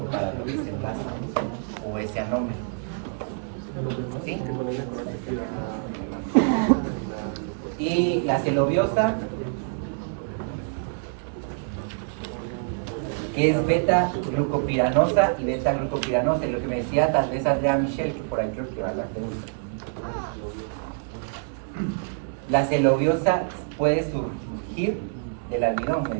para ese enlace o ese anómero. ¿Sí? Y la celobiosa, que es beta-glucopiranosa y beta-glucopiranosa, y lo que me decía tal vez Andrea Michel, que por ahí creo que va la pregunta. La celobiosa puede surgir del almidón, me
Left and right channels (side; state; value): left; silent; 61 dB below the other